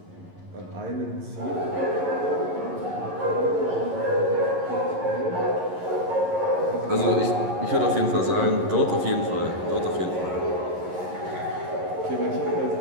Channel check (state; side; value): late; left; 11 ms